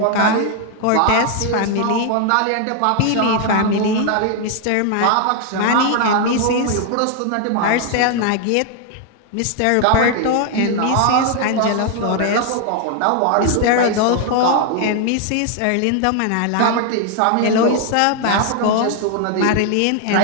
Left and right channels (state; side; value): different; both; correlation 0.00